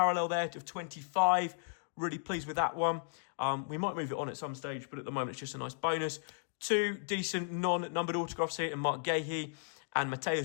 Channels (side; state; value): right; silent; digital silence